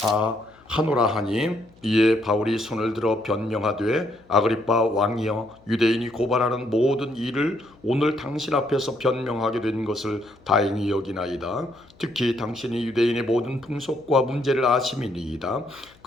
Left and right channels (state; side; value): noise; left; hum, 29 dB below the sound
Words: 하노라 하니 이에 바울이 손을 들어 변명하되 아그리빠 왕이여 유대인이 고발하는 모든 일을 오늘 당신 앞에서 변명하게 된 것을 다행히 여기나이다. 특히 당신이 유대인의 모든 풍속과 문제를 아심이니이다.